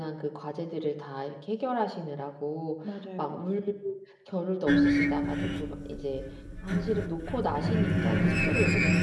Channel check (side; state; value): both; identical; correlation 1.00